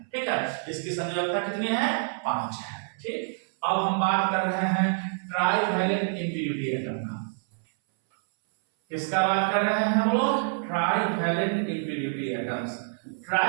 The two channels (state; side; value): silent; left; 60 dB below the other